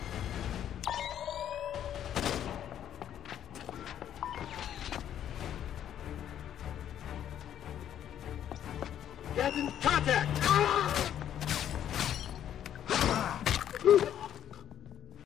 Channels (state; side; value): quieter; right; 10.4 dB